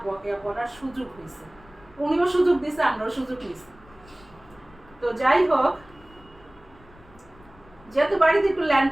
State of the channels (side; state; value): left; noise; rumble, 25 dB below the sound